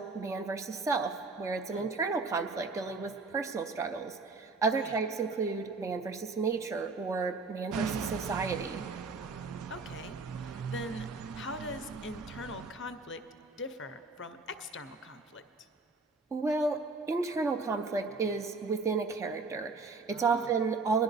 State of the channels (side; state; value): left; quieter; 3.9 dB